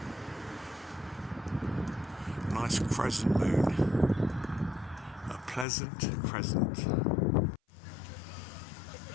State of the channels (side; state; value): right; drops out; at 5.7 s